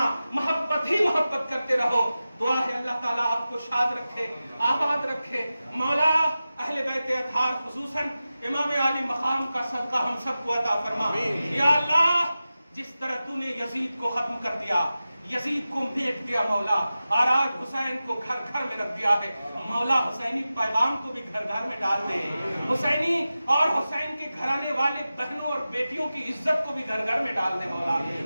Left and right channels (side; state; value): both; inverted; correlation -0.94